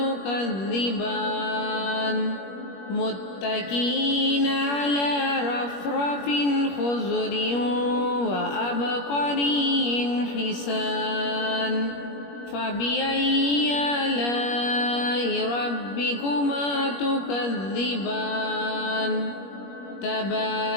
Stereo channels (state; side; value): late; right; 21 ms